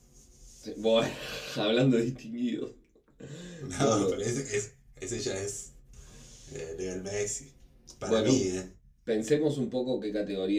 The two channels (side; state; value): both; identical; correlation 1.00